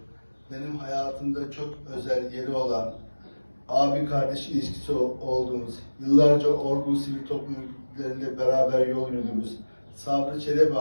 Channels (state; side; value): inverted; both; correlation -1.00